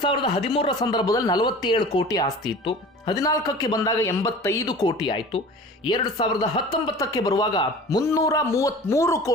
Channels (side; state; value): both; normal; correlation 0.40